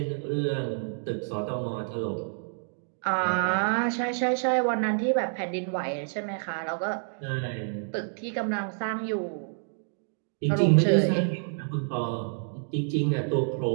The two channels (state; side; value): silent; left; digital silence